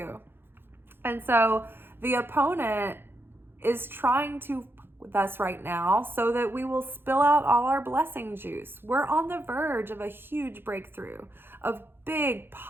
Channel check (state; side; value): late; left; 0.10 ms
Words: And so the opponent is trying to with us right now so that we will spill out all our blessing juice. We're on the verge of a huge breakthrough, of big